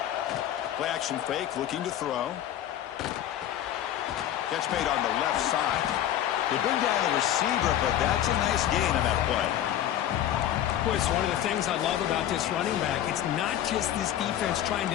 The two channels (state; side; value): quieter; right; 11.6 dB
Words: Play action fake, looking to throw. Catch made on the left side. They bring down the receiver, but that's a nice gain on that play. It's one of the things I love about this running back. It's not just this defense trying to